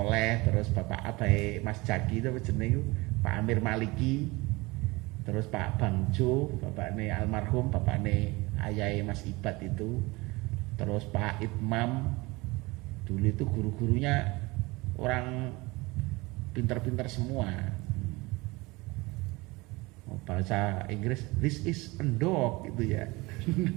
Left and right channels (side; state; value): left; quieter; 23.3 dB